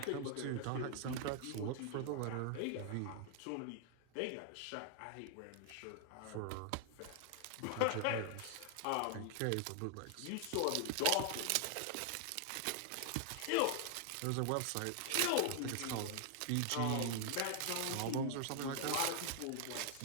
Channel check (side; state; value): both; different; correlation -0.01